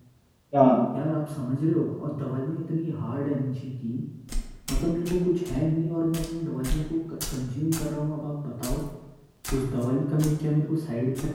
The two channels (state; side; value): identical; both; correlation 1.00